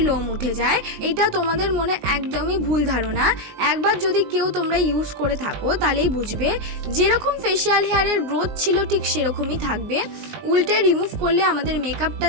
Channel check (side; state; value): left; late; 19 ms